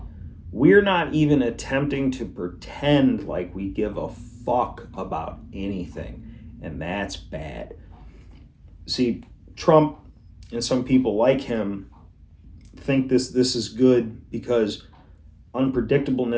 We're not even attempting to pretend like we give a fuck about anything, and that's bad. See, Trump and some people like him think this is good because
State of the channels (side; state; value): both; identical; correlation 1.00